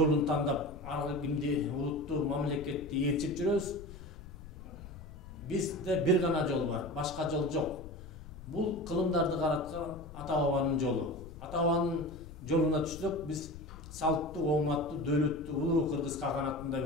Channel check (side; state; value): left; noise; rumble, 14 dB below the sound